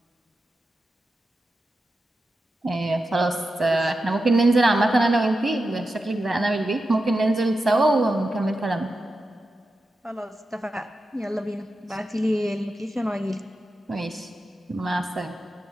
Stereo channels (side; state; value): both; normal; correlation 0.90